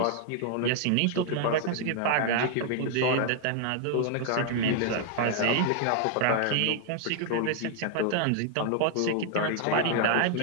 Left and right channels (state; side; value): different; both; correlation 0.00